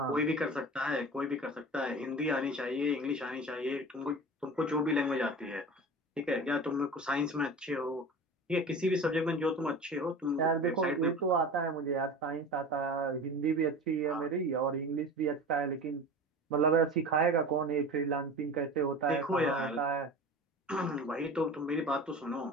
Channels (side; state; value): both; normal; correlation 0.34